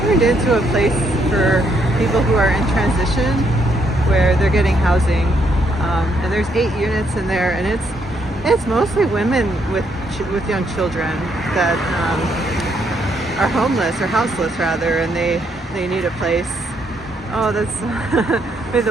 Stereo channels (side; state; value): both; normal; correlation 0.73